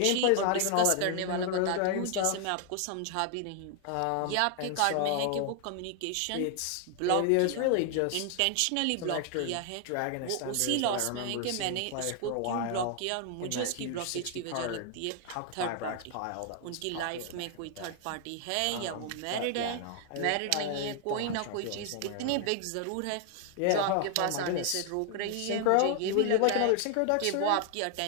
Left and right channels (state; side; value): different; both; correlation 0.00